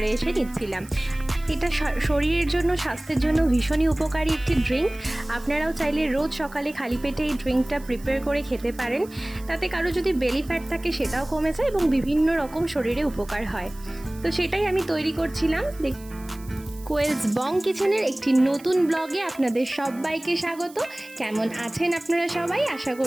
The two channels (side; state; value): right; noise; hiss, 22 dB below the sound